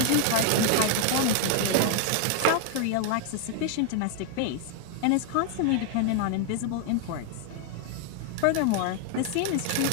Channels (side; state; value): both; different; correlation 0.00